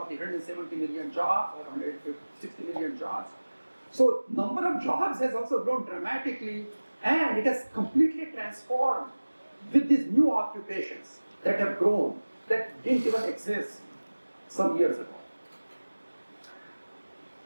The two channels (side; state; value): both; inverted; correlation -1.00